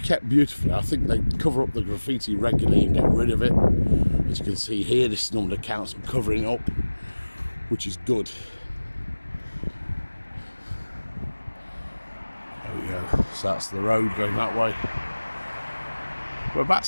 beautifully. I think they cover up the graffiti regularly and get rid of it. As you can see here, this is normally the council covering it up, which is good. There we go. So that's the road going that way. We're about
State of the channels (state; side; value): inverted; both; correlation -1.00